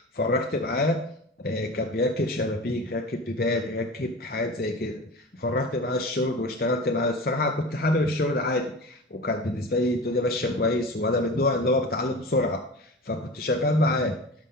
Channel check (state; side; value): normal; both; correlation 0.33